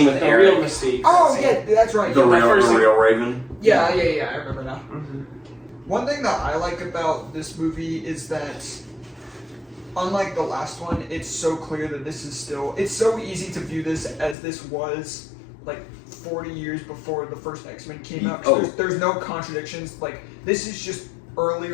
with the Eric, real Mystique. Oh yeah, that's right. the Yeah, real Raven. yeah, I remember now. Mhm. One thing that I like about this movie is that, unlike the last one, it's so clear that this is still. It's so easy to view this as this was 40 years before the first X-Men came out. 'Cause there's no contradictions. This is just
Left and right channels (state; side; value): drops out; right; at 14.4 s